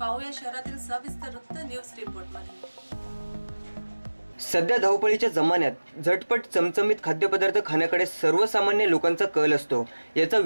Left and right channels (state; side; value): inverted; both; correlation -1.00